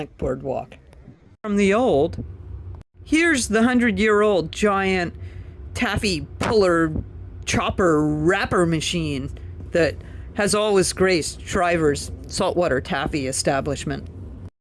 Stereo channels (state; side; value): identical; both; correlation 1.00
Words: boardwalk. From the old, here's the 100-year-old giant taffy puller chopper wrapper machine that has always graced Shriver's saltwater taffy establishment.